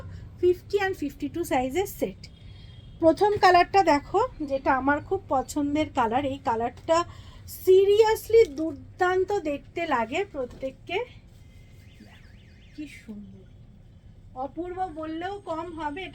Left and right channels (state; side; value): identical; both; correlation 1.00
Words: 50 and 52 সাইজের সেট। প্রথম কালারটা দেখো, যেটা আমার খুব পছন্দের কালার। এই কালারটা সিরিয়াসলি দুর্দান্ত দেখতে লাগে প্রত্যেককে, কি সুন্দর, অপূর্ব বললেও কম হবে।